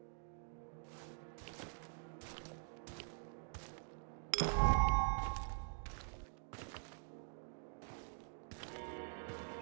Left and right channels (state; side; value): silent; left; digital silence